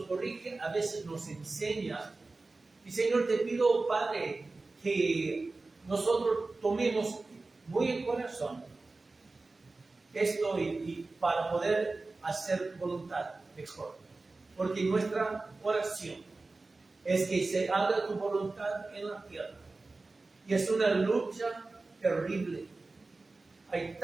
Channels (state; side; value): quieter; left; 3.5 dB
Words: corrige, a veces nos enseña. Y Señor, te pido, Padre, que nosotros tomemos muy en corazón esto y para poder hacer voluntad mejor. Porque nuestra oración es que se haga tu voluntad en la tierra. Y es una lucha terrible. Hay